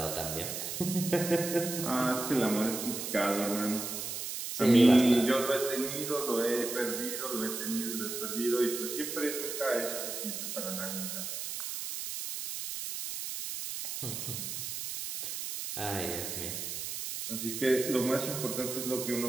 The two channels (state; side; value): noise; right; hiss, 5 dB below the sound